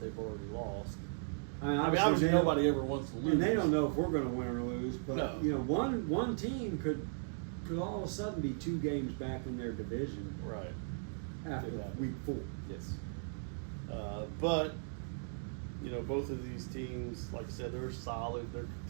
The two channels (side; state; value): left; silent; digital silence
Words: already lost. I mean, Obviously they don't- nobody ever wants to lose. And they don't know if we're going to win or lose, but No. one team could all of a sudden be 2 games back in their division Right. after Could happen. week 4. Yes. But, both of these teams, like I said, they're solid. They're